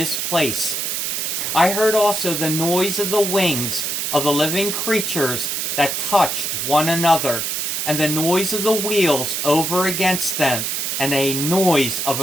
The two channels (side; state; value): right; noise; hiss, 1 dB below the sound